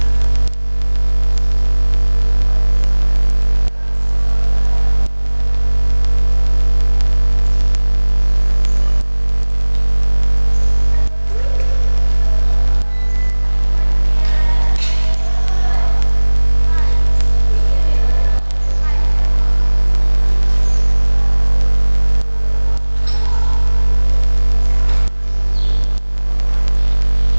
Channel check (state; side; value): inverted; both; correlation -1.00